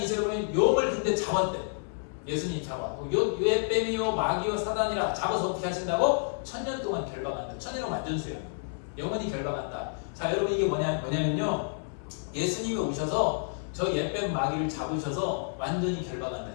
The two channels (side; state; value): right; silent; digital silence